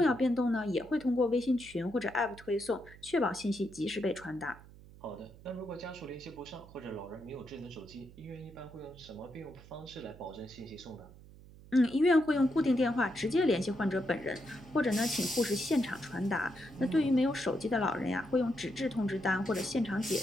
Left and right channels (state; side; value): noise; right; hum, 20 dB below the sound